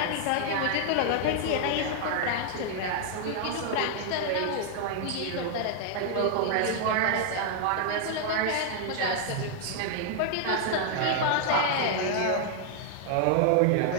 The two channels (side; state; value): both; different; correlation 0.00